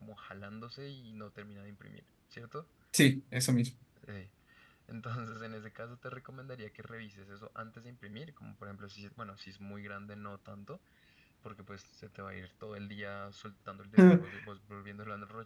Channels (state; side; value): identical; both; correlation 1.00